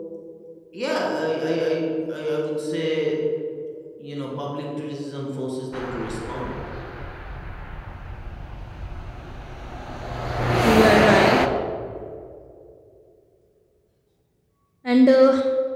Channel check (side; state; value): both; identical; correlation 1.00